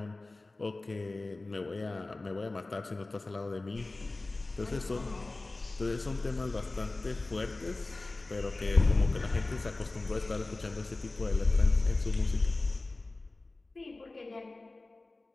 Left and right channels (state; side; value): quieter; right; 3.1 dB